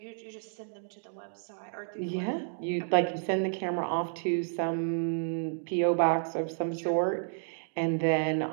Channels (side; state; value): left; silent; digital silence